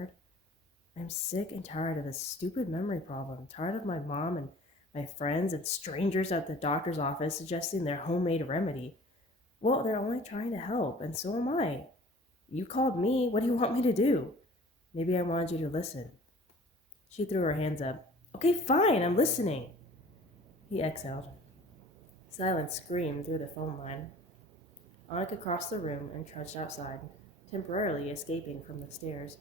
I'm sick and tired of this stupid memory problem, tired of my mom and my friends and strangers at the doctor's office suggesting their homemade remedy. Well, they're only trying to help, and so am I. You called me. What do you want me to do? Maybe I wanted you to listen. She threw her hands up. Okay, fine, I'm listening. He exhaled. Silence screamed through the phone line. Annika crossed the room and trudged outside, temporarily escaping from the stairs.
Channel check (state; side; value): normal; both; correlation 0.47